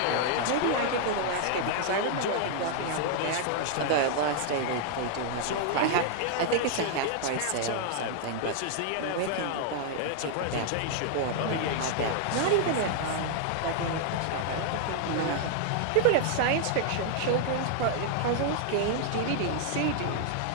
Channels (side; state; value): both; different; correlation -0.01